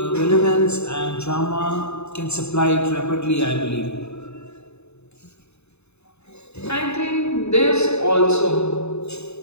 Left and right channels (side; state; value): right; late; 0.81 ms